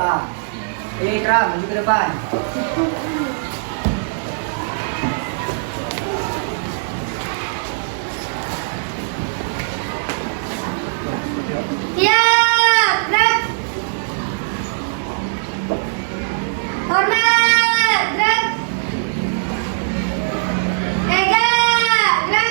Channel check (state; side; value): silent; left; digital silence